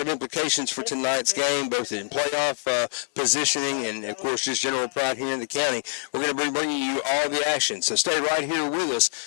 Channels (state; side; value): silent; right; 62 dB below the other